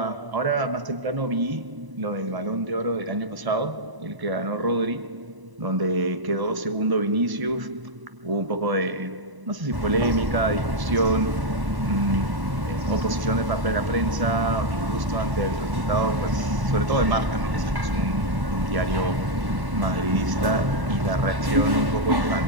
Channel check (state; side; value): late; left; 1.0 ms